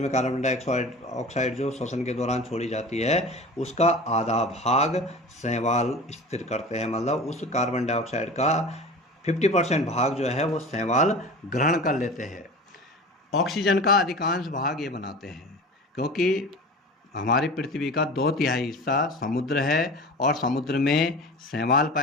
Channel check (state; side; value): normal; both; correlation 0.35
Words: कार्बन डाइऑक्साइड जो श्वसन के दौरान छोड़ी जाती है, उसका आधा भाग शैवाल स्थिर करते हैं। मतलब उस कार्बन डाइऑक्साइड का 50% भाग जो है वो शैवाल ग्रहण कर लेते हैं। ऑक्सीजन का अधिकांश भाग ये बनाते हैं, क्योंकि हमारी पृथ्वी का 2/3 हिस्सा समुद्र है और समुद्र में शैवाल